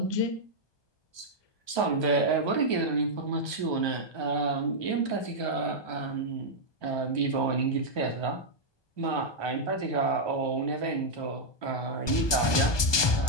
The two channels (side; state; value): right; late; 1.2 ms